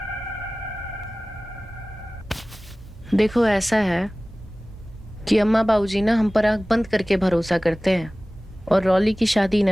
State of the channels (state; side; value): normal; both; correlation 0.98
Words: देखो ऐसा है कि अम्मा बाबूजी ना हम पर आंख बंद करके भरोसा करते हैं, और रॉली की शादी